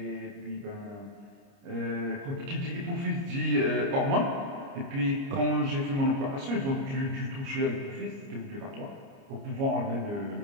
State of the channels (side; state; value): left; late; 29 ms